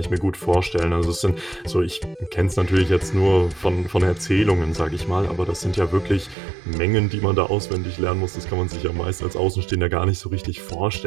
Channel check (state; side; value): drops out; left; at 6.4 s